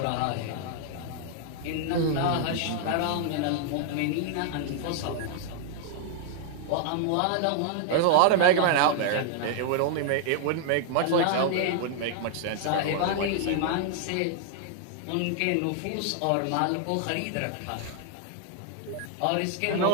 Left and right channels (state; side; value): different; both; correlation -0.01